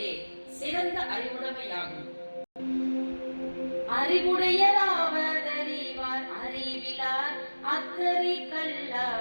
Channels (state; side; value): inverted; both; correlation -1.00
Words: சிறந்த அறிவுடைமையாகும். அறிவுடையராவதறிவார் அறிவிலார் அக்கறை